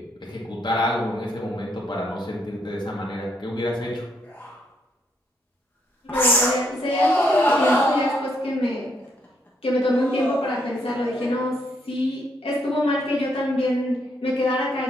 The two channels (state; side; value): normal; both; correlation 0.74